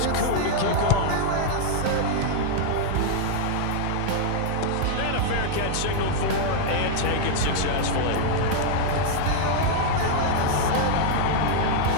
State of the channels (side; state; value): both; different; correlation 0.00